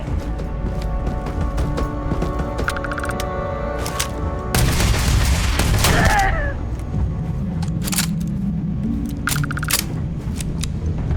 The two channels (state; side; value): identical; both; correlation 1.00